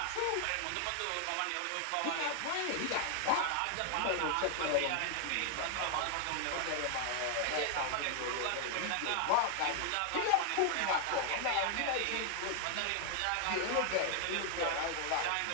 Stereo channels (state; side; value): different; both; correlation 0.00